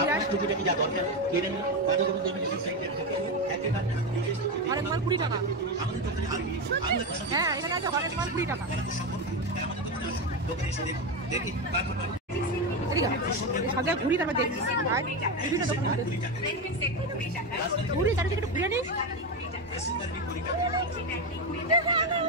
আপনার টুকিটাকি যা দরকার কিনে নিন। বাজার করুন ইমিটেশন সেন্টার থেকে একেবারে নিজের হরেক মাল 20 টাকা। আমাদের দোকানে হ্যাঁ, এখানে আছে হরেক মাল 20 টাকা। দোকানে এসে দেখুন, দেখি তারপর সাজা ঘুরি তারপর দেখি বিভিন্ন দোকান ঘুরি চারিদিকে একটু ঘুরে নিস।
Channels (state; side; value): normal; both; correlation 0.13